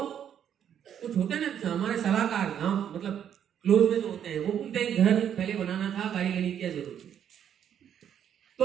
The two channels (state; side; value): quieter; left; 9.2 dB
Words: कुछ होते हैं ना हमारे सलाहकार गांव, मतलब क्लोज में जो होते हैं, वो बोलते हैं घर पहले बनाना था, गाड़ी लेने की क्या जरूरत है।